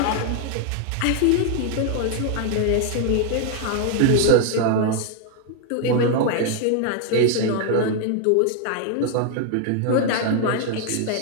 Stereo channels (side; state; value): both; different; correlation 0.00